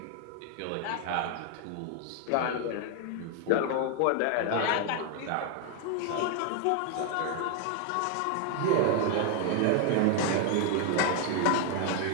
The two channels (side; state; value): both; different; correlation 0.00